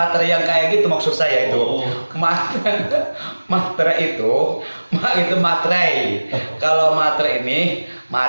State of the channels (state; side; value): inverted; both; correlation -1.00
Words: yang kayak gitu maksud saya itu. Oh. Materai itu materai. Kalau materai ini